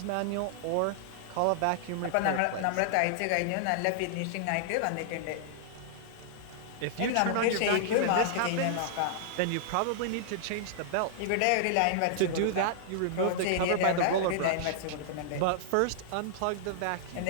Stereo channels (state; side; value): different; both; correlation -0.01